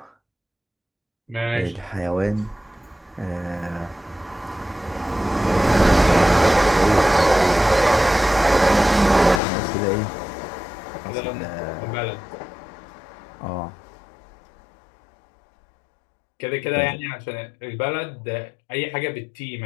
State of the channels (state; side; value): drops out; right; at 9.4 s